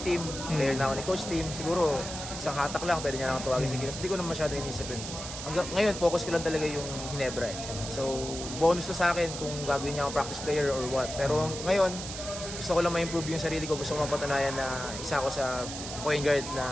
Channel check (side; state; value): right; noise; hiss, 8 dB below the sound